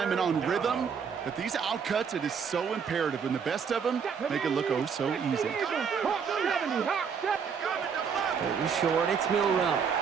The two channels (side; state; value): left; quieter; 6.5 dB